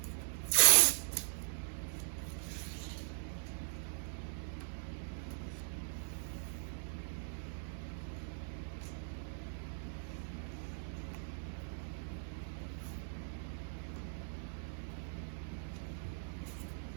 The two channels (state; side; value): silent; left; digital silence